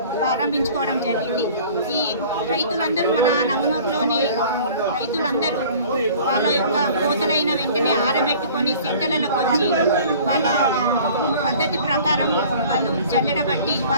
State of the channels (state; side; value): inverted; both; correlation -0.47